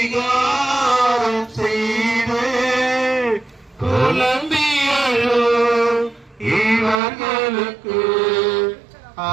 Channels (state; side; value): drops out; left; at 7.0 s